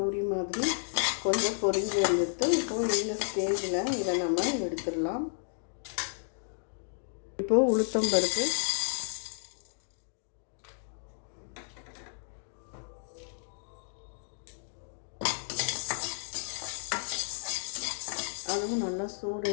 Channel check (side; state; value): right; silent; digital silence